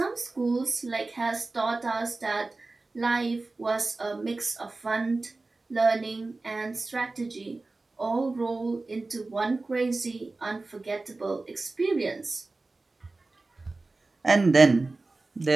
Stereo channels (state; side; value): quieter; left; 3.4 dB